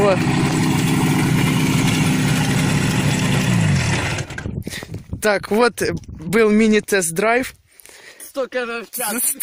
Так, вот был мини-тест-драйв. 100 км в час.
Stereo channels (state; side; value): identical; both; correlation 1.00